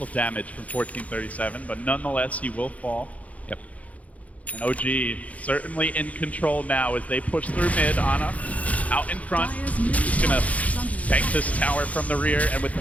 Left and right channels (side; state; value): right; late; 0.069 ms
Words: damage from 1437, but nonetheless he will fall. Yep. And OG certainly in control now as they push through mid. Ana out in front. He's gonna tank this tower from the rear, and with